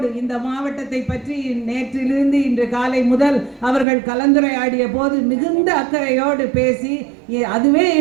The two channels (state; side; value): drops out; left; at 3.9 s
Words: இந்த மாவட்டத்தை பற்றி நேற்றிலிருந்து இன்று காலை முதல் அவர்கள் கலந்துரையாடிய போது மிகுந்த அக்கறையோடு பேசி, அதுவே